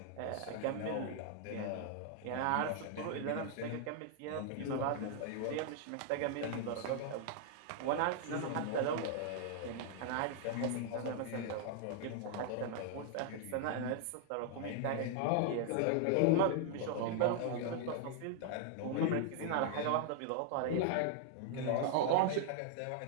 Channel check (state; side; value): different; both; correlation -0.01